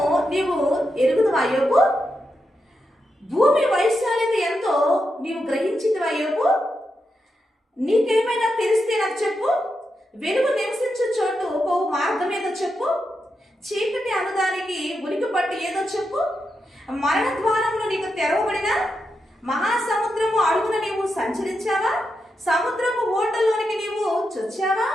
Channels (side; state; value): both; normal; correlation 0.86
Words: నీవు ఎరుగుదువా యోబు? భూమి వైశాల్యత ఎంతో నీవు గ్రహించితివా యోబు? నీకేమైనా తెలిస్తే నాకు చెప్పు. వెలుగు నివసించే చోటు పోవు మార్గం ఏదో చెప్పు. చీకటి అనుదానికి ఉనికి పట్టు ఏదో చెప్పు. మరణ ద్వారంలో నీకు తెరవబడిన మహాసముద్రము అడుగున నీవు సంచరించావా? సముద్రపు ఓటల్లోనికి నీవు చొచ్చావా?